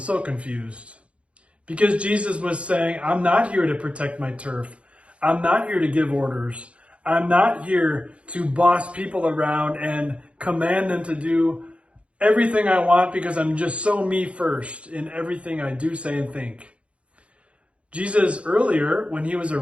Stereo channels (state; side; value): late; left; 0.061 ms